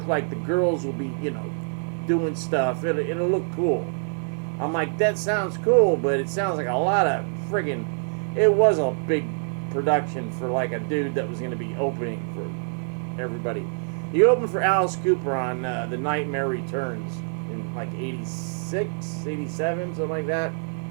like the girls will be, you know, doing stuff. It'll look cool. I'm like, that sounds cool, but it sounds like a lot of friggin', it was a big production for like a dude that was going to be opening for everybody. He opened for Alice Cooper on The Nightmare Returns in like 86, 87, something like that.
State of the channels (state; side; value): silent; left; 61 dB below the other